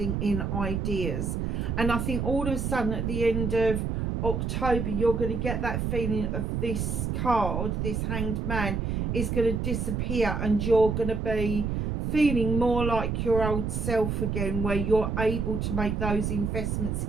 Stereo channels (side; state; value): right; noise; rumble, 1 dB below the sound